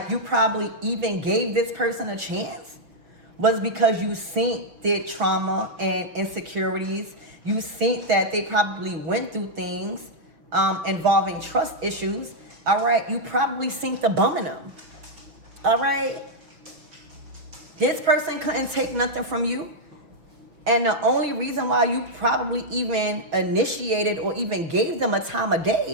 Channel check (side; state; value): left; late; 6.2 ms